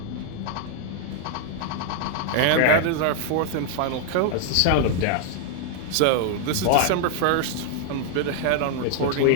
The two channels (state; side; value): different; both; correlation 0.00